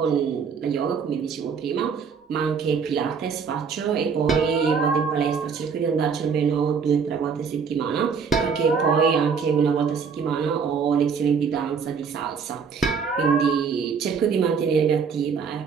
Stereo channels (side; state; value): left; quieter; 6.0 dB